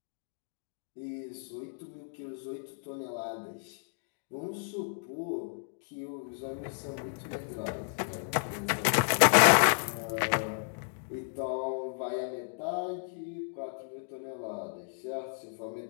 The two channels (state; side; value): silent; right; digital silence